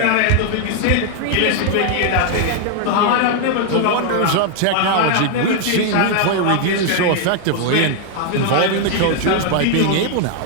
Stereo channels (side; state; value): both; different; correlation 0.00